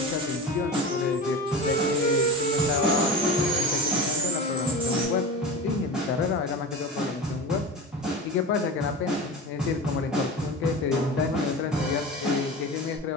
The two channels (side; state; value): both; normal; correlation 0.29